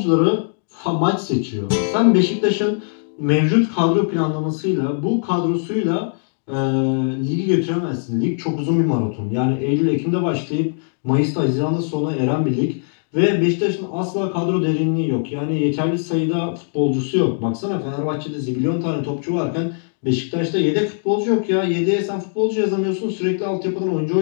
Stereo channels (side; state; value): right; silent; digital silence